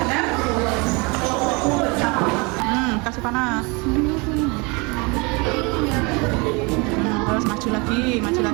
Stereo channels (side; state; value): left; quieter; 28.5 dB